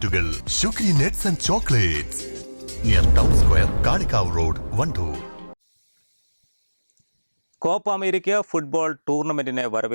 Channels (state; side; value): inverted; both; correlation -1.00